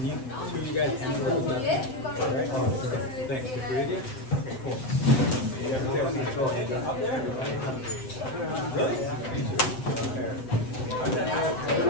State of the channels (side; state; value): right; late; 7.8 ms